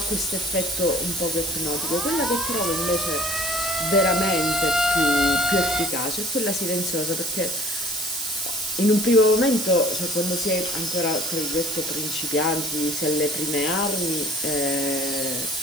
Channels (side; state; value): right; noise; hiss, 4 dB below the sound